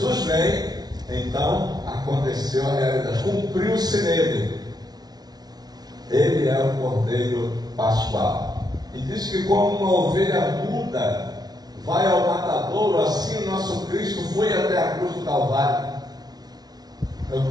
vem, então aconteceu a realidade, cumpriu-se nele. Ele é o Cordeiro Pascual. E diz que como uma ovelha muda vai ao matadouro, assim o nosso Cristo foi até a cruz do Calvário. Eu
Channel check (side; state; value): left; late; 0.19 ms